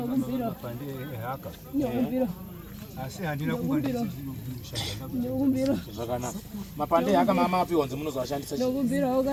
ehaka. Nokumbira. asi handina kunga zvakanaka. Mapande akamama api wanzi munozoshandisa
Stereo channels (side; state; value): both; identical; correlation 1.00